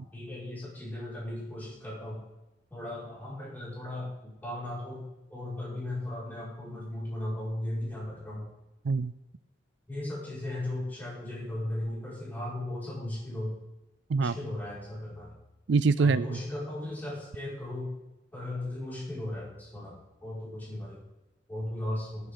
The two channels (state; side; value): normal; both; correlation 0.73